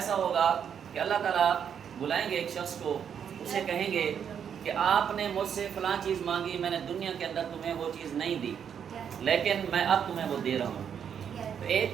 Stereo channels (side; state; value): left; quieter; 8.0 dB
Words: ہوگا کہ اللہ تعالیٰ بلائیں گے ایک شخص کو، اسے کہیں گے کہ آپ نے مجھ سے فلاں چیز مانگی، میں نے دنیا کے اندر تمہیں وہ چیز نہیں دی لیکن میں اب تمہیں وہ دے رہا ہوں۔ تو ایک